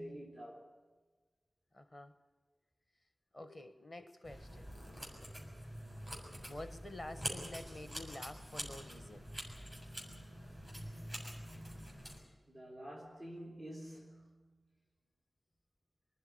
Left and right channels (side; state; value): both; normal; correlation 0.96